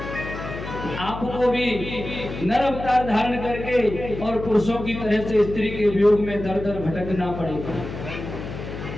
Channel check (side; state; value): left; noise; hum, 9 dB below the sound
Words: आपको भी नर अवतार धारण करके और पुरुषों की तरह से स्त्री के वियोग में दर दर भटकना पड़ेगा।